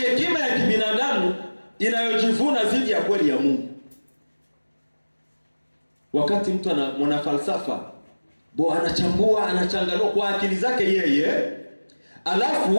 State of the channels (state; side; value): inverted; both; correlation -1.00